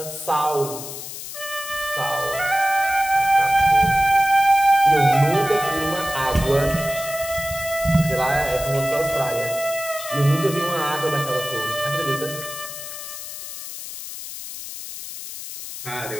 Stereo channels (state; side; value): noise; left; hiss, 10 dB below the sound